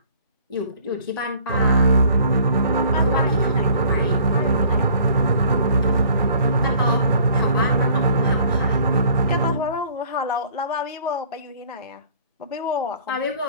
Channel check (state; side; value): inverted; both; correlation -0.54